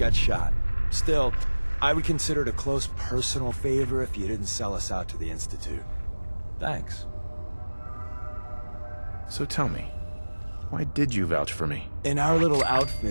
shot. Still, I would consider it a close personal favor if you didn't sell us out to the Institute. Thanks. So tell me, why did you vouch for me? In our little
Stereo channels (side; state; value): both; inverted; correlation -1.00